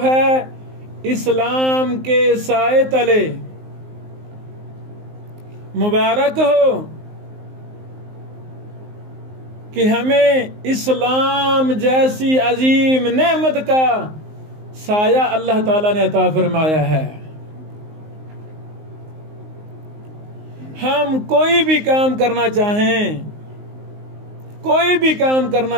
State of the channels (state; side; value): late; left; 19 ms